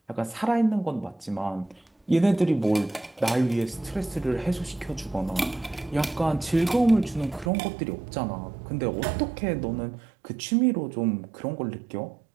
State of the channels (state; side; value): drops out; left; at 7.5 s